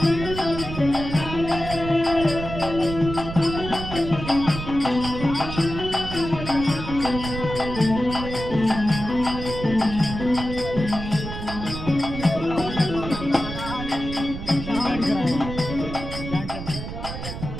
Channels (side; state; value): right; noise; rumble, 8 dB below the sound